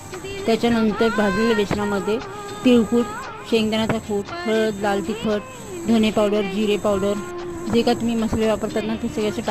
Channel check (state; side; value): identical; both; correlation 1.00